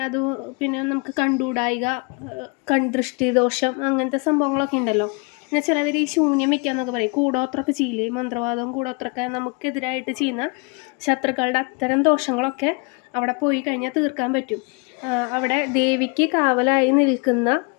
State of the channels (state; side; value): quieter; right; 31.4 dB